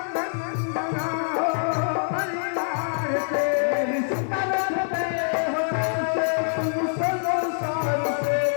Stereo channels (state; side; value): silent; right; digital silence